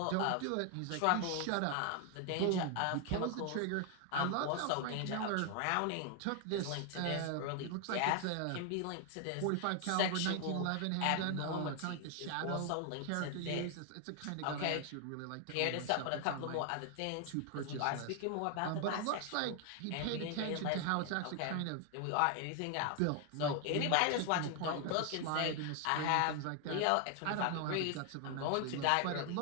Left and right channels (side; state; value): both; different; correlation 0.00